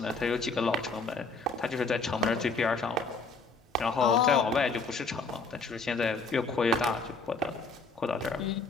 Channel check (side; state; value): right; quieter; 3.9 dB